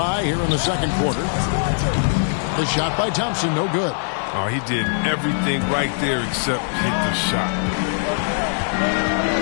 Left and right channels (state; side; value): silent; right; digital silence